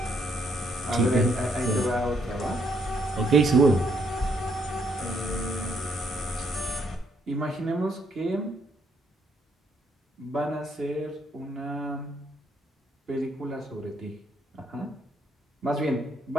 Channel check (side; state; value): both; normal; correlation 0.72